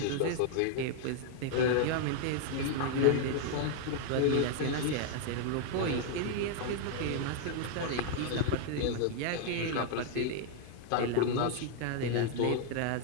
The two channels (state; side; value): different; both; correlation 0.00